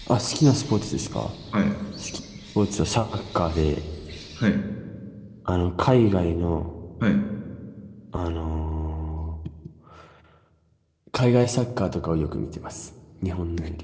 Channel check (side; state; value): both; identical; correlation 1.00